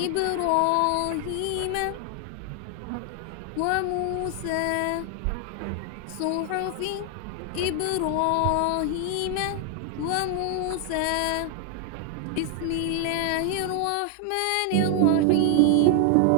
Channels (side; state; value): both; different; correlation 0.00